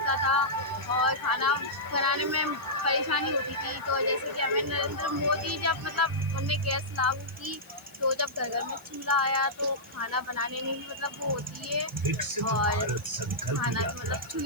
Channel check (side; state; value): left; noise; hiss, 25 dB below the sound